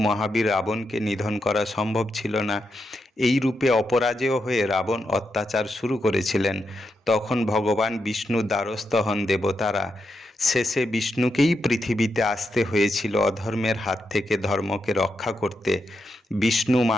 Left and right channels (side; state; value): both; normal; correlation 0.85